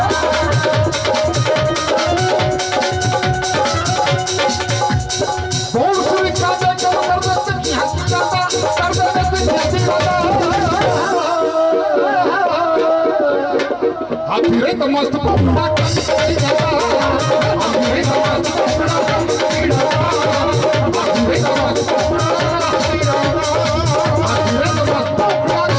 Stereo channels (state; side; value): identical; both; correlation 1.00